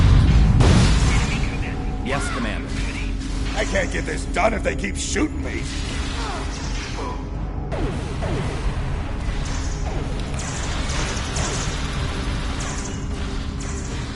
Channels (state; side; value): identical; both; correlation 1.00